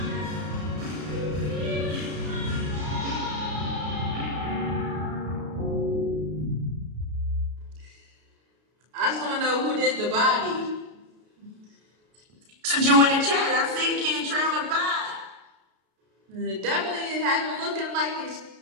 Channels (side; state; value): left; late; 33 ms